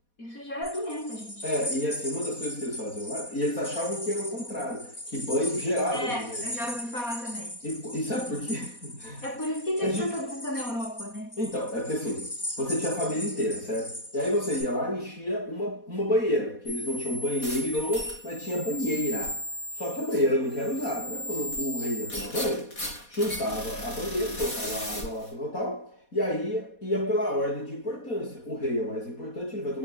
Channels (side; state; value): right; late; 4.2 ms